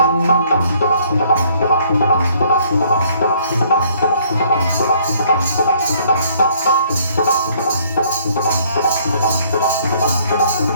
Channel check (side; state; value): both; inverted; correlation -0.62